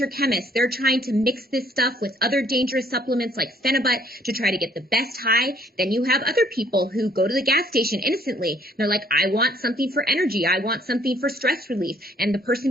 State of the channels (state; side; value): normal; both; correlation 0.62